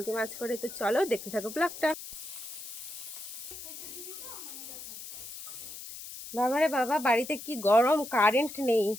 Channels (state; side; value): noise; left; hiss, 11 dB below the sound